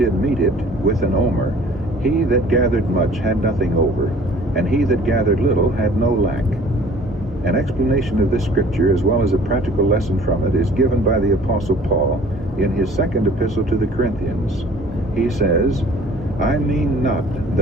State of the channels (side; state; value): both; normal; correlation 0.51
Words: meet it with an omer, he that gathered much had nothing over, and he that gathered little had no lack. An explanation of this scripture, as well as a practical lesson from it, is given by the Apostle Paul in his second epistle to the Corinthians. He says, "I mean not